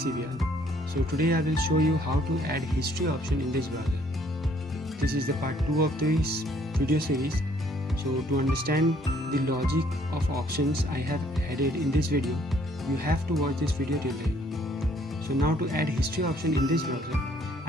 So today I will show you how to add history option in this browser. This is the part 2 of this video series. So to understand the logic of options I have added in this video, you have to watch this video till the end. So now to add history option in this browser,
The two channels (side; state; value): both; normal; correlation 0.63